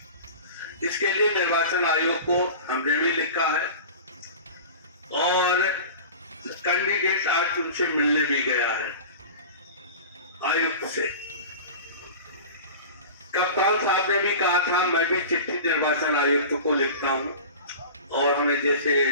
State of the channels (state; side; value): inverted; both; correlation -0.35